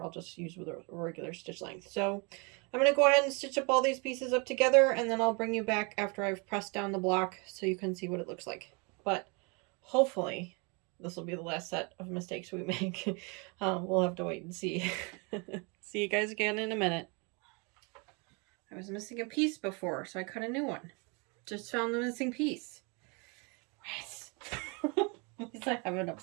just use with a regular stitch length. So I'm going to go ahead and stitch up all these pieces up together, and then I'll bring you back after I've pressed down the block so you can see what it looks like. But hopefully this will be the last set of mistakes we make. We'll have to wait and see. See you guys again in a minute. I was missing a piece before, so I cut a new one. Just found the missing piece. Yes. At least I have it up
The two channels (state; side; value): quieter; left; 31.7 dB